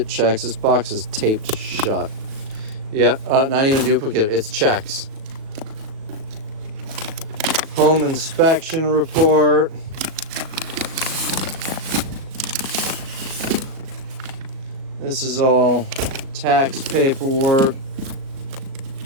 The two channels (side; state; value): left; late; 37 ms